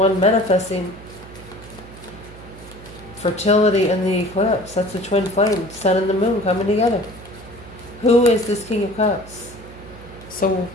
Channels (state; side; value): noise; right; hum, 18 dB below the sound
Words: manifesting fertility in the eclipse. That's the twin flame, sun and the moon coming together. Who is this King of Cups? So,